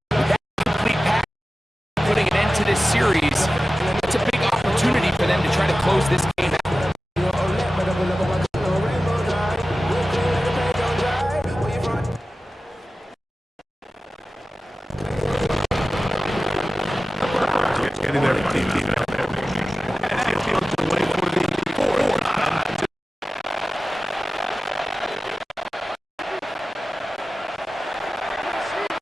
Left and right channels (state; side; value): normal; both; correlation 0.96